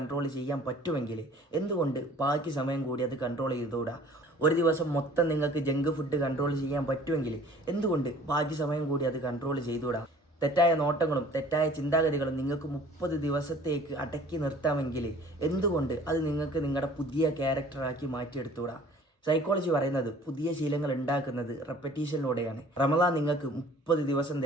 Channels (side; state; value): both; normal; correlation 0.50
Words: ചെയ്യാൻ പറ്റുമെങ്കിൽ എന്തുകൊണ്ട് ബാക്കി സമയം കൂടി അത് കൺട്രോൾ ചെയ്തുകൂടാ? ഒരു ദിവസം മൊത്തം നിങ്ങൾക്ക് ജങ്ക് ഫുഡ് കൺട്രോൾ ചെയ്യാൻ പറ്റുമെങ്കിൽ എന്തുകൊണ്ട് ബാക്കി സമയം കൂടി അത് കൺട്രോൾ ചെയ്തുകൂടാ? തെറ്റായ നോട്ടങ്ങളും തെറ്റായ ചിന്താഗതികളും നിങ്ങൾക്ക് 30 ദിവസത്തേക്ക് അടക്കി നിർത്താമെങ്കിൽ എന്തുകൊണ്ട് അത് നിങ്ങൾക്ക് നിങ്ങളുടെ പുതിയ ക്യാരക്ടറാക്കി മാറ്റിയെടുത്തുകൂടാ? സൈക്കോളജി പറയുന്നത് പുതിയ ശീലങ്ങൾ ഉണ്ടാക്കുന്നത് റെപ്പറ്റീഷനിലൂടെയാണ്. റമദാൻ നിങ്ങൾക്ക് 30 ദിവസം